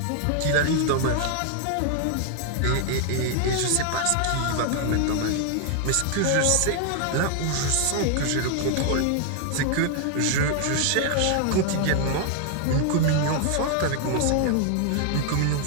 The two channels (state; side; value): different; both; correlation 0.00